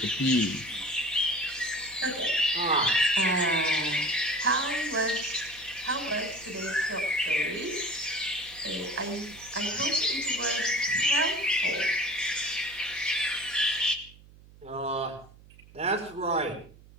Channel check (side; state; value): right; noise; hum, 23 dB below the sound